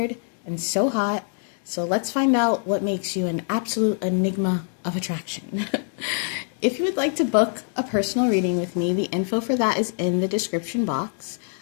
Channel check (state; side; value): silent; right; 56 dB below the other